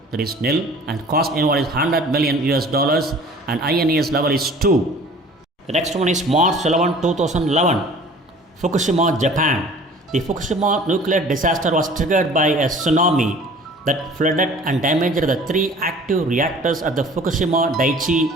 That is nil, and cost involved is 100 million US dollars, and INES level is 2. The next one is March 11, 2011, Fukushima, Japan. The Fukushima nuclear disaster was triggered by a tsunami that flooded and damaged the 3 active reactors at the Fukushima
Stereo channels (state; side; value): normal; both; correlation 0.48